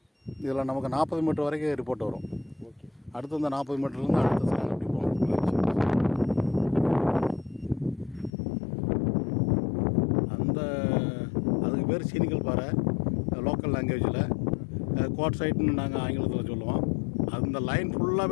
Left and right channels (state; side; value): drops out; right; at 8.3 s